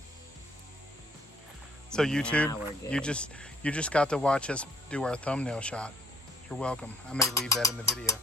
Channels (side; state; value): both; normal; correlation 0.62